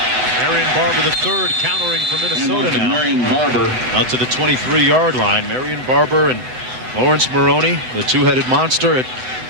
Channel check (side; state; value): left; late; 7.9 ms